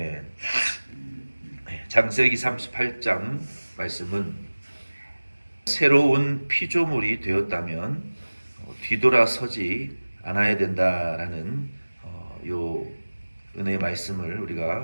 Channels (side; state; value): both; inverted; correlation -1.00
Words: 창세기 38장 말씀은 새로운 피조물이 되었다면 뒤돌아서지 않아야 된다라는 요 은혜의 말씀을